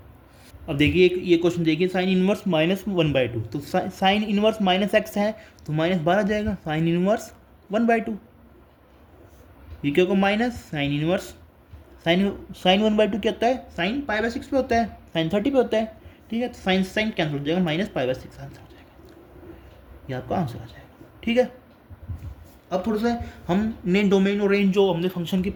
अब देखिए ये क्वेश्चन देखिए, साइन इनवर्स -1/2, तो साइन इनवर्स माइनस एक्स है, तो माइनस बाहर आ जाएगा, साइन इनवर्स 1/2, ये क्या होगा माइनस साइन इनवर्स साइन 1/2 क्या होता है, साइन पाई/6 पे होता है, साइन 30 पे होता है। ठीक है, तो साइन साइन कैंसिल हो जाएगा, माइनस पाई/6 आंसर हो जाएगा, ये आपका आंसर आ जाएगा। ठीक है, अब थोड़ा सा हमने डोमेन और रेंज जो हमने फंक्शन की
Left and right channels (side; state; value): both; identical; correlation 1.00